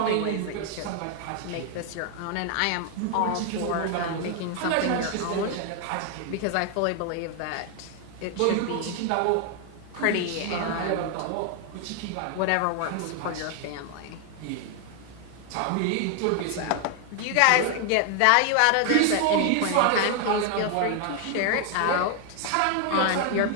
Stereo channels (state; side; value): different; both; correlation 0.00